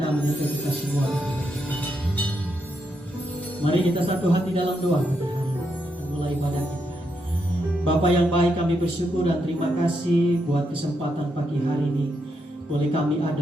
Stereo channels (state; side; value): normal; both; correlation 0.81